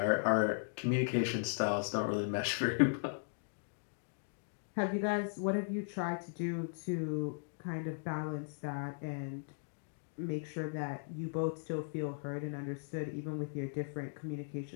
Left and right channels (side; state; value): right; silent; digital silence